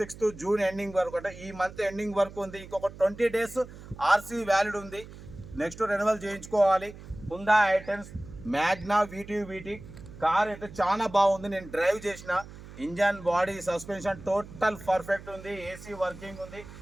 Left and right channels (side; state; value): right; noise; hum, 16 dB below the sound